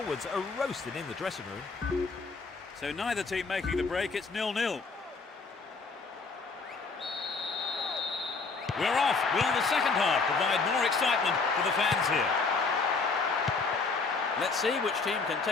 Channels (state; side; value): quieter; right; 4.4 dB